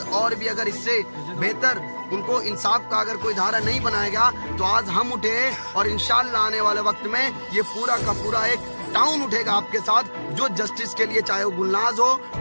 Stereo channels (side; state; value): both; inverted; correlation -1.00